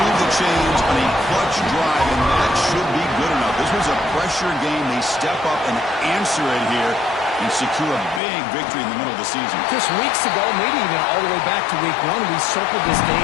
the chains on a clutch drive, and that should be good enough. This was a pressure game. They step up and answer it here and secure a big victory in the middle of the season. Just weeks ago, maybe even all the way back to week 1, we circled this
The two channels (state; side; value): drops out; right; at 8.2 s